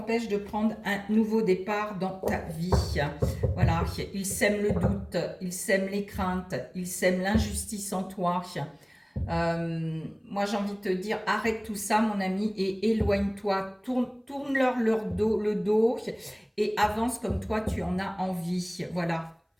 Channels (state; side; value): identical; both; correlation 1.00